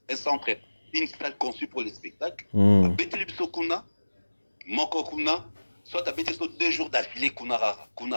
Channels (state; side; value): inverted; both; correlation -1.00